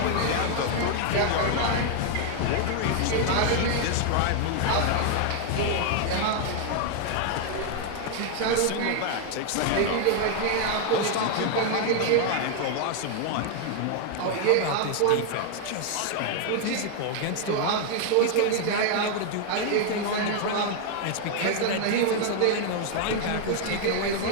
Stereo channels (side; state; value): both; different; correlation 0.00